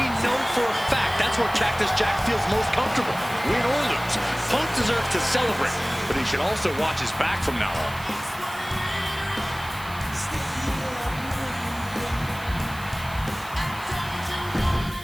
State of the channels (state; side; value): noise; right; hiss, 17 dB below the sound